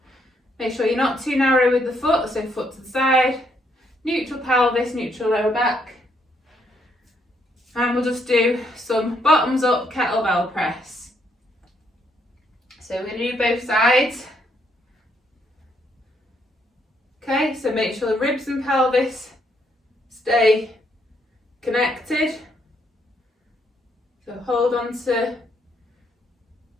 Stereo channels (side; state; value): both; normal; correlation 0.73